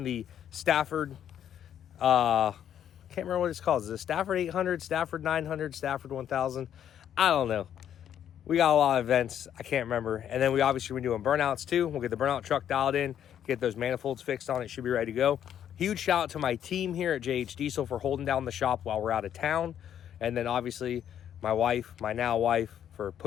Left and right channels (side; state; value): right; quieter; 9.8 dB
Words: the Stafford, can't remember what it's called. Is it Stafford 800, Stafford 900, Stafford 1000? I don't know. We got a lot of events. I can't remember. And then we obviously been doing burnouts too. We'll get the burnout truck dialed in, get those manifolds fixed on it. Should be ready to go. Huge shout out to my team here at JH Diesel for holding down the shop while we're out of town. And then obviously my wife, my now wife, for